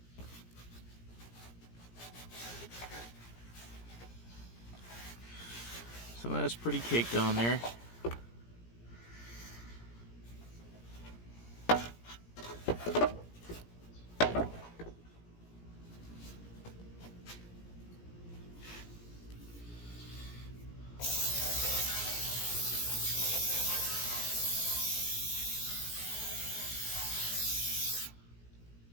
some of that's pretty caked on there.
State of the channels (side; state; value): right; late; 17 ms